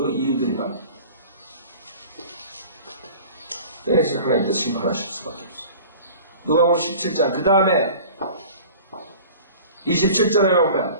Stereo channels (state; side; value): inverted; both; correlation -0.42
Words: 이유들이 많아. 그래서 하나님께서 심판하실 수밖에 없어요. 누가복음 17장. 그 다음에 27절에 보면